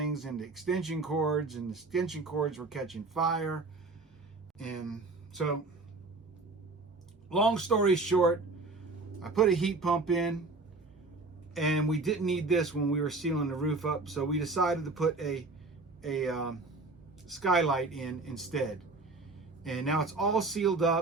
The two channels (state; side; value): quieter; left; 3.5 dB